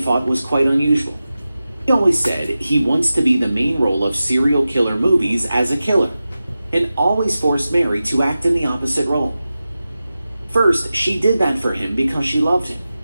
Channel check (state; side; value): inverted; both; correlation -0.94